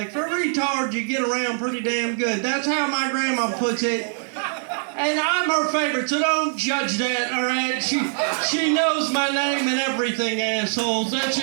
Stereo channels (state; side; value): silent; left; 59 dB below the other